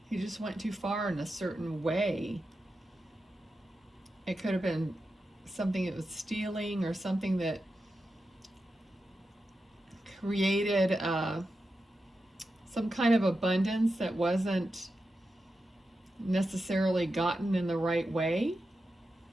just went too far in a certain way. It could have been something that was stealing, or something that created some kind of abundance that wasn't necessarily gotten in the right way.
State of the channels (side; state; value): both; normal; correlation 0.90